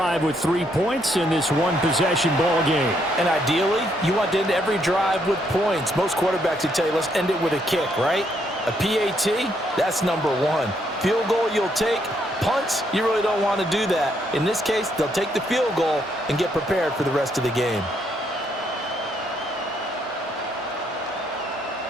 with 3 points in this one-possession ball game. And ideally, you want to end every drive with points. Most quarterbacks would tell you, let's end it with a kick, right? A PAT, that's number one. Field goal you'll take. Punts, you really don't want to do that. In this case, they'll take the field goal and get prepared for the rest of the game.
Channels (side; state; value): both; normal; correlation 0.73